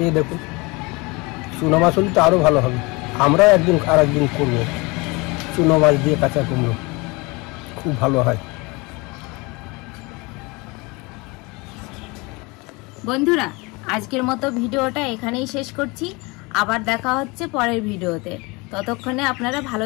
দেখুন, চুনো মাছ হলে তো আরও ভালো হবে। আমরা একদিন আর একদিন করবো চুনো মাছ দিয়ে কাঁচা কুমড়ো, খুব ভালো হয়। বন্ধুরা, আজকের মতো ভিডিওটা এখানেই শেষ করছি। আবার দেখা হচ্ছে পরের ভিডিওতে। ততক্ষণে আপনারা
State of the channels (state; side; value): quieter; right; 26.1 dB